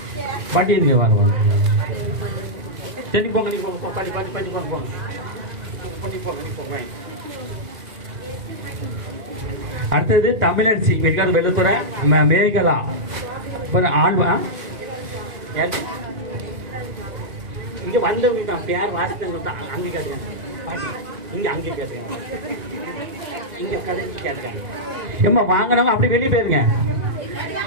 பாட்டி இருங்க வர சரி போங்க நீ போங்க பாட்டி பாட்டி பாட்டி போங்க போங்க பண்ணி போங்க போங்க. அடுத்தது தமிழரசி இருக்காது வெள்ளத்துறை மேகலா ஆழ்வா இங்க வந்தவங்க பேர் வாசித்தவங்க அங்கே கேட்டுங்க பாட்டி இங்க அங்கே கேட்டுங்க இங்க கடைக்கு கேட்டுங்க ஏம்மா வாங்கினவங்க அப்படி வெளியே போயிருங்க.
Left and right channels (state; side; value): late; left; 2.0 ms